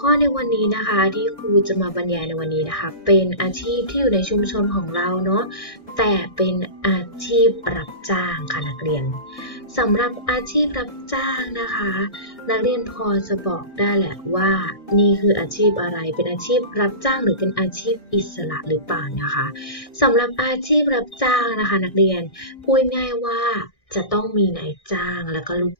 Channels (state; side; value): late; right; 1.6 ms